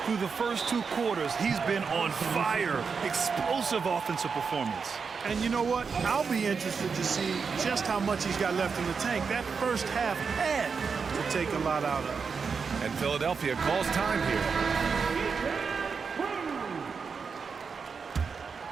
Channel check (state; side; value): quieter; left; 5.5 dB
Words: Through the first 2 quarters, he's been on fire. Explosive offensive performance. And you know what? I'll be interested to see just how much he's got left in the tank. That first half had to take a lot out of. And Philadelphia calls time here.